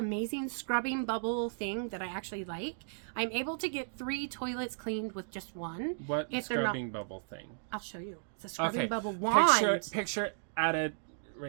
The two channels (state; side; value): silent; left; digital silence